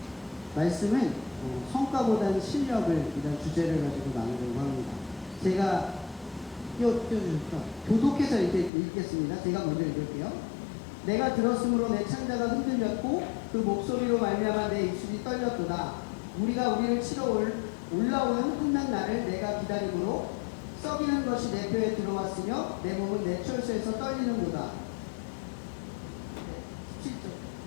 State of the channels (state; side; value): drops out; right; at 8.7 s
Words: 말씀은 성과보다는 실력을 이런 주제를 가지고 나누려고 합니다. 제가 띄워주셨죠. 교독해서 이렇게 읽겠습니다. 제가 먼저 읽을게요. 내가 들었으므로 내 창자가 흔들렸고 그 목소리로 말미암아 내 입술이 떨렸도다. 우리가 우리를 치러 올라오는 한낱 날을 내가 기다림으로 썩이는 것이 내 뼈에 들어왔으며 내 몸은 내 철수에서 떨리는도다.